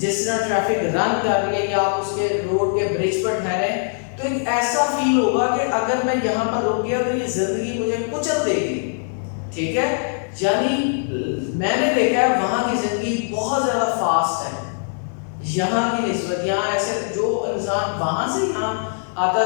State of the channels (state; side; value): silent; right; digital silence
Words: طرح ٹریفک رن کر رہی ہے یا آپ اس کے روڈ کے برج پر ٹھہریں تو ایک ایسا فیل ہوگا کہ اگر میں یہاں پر رک گیا تو یہ زندگی مجھے کچل دے گی، ٹھیک ہے. یعنی میں نے دیکھا ہے وہاں کی زندگی بہت زیادہ فاسٹ ہے یہاں کی نسبت. یہاں ایسے جو انسان وہاں سے یہاں آتا